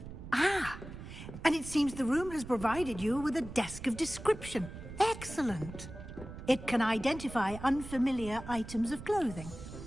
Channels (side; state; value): right; noise; rumble, 12 dB below the sound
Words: Ah, and it seems the room has provided you with a desk of description. Excellent. It can identify unfamiliar items of clothing.